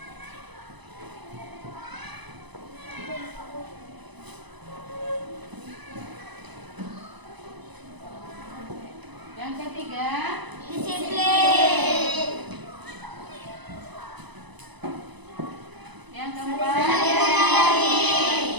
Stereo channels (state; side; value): late; left; 1.0 ms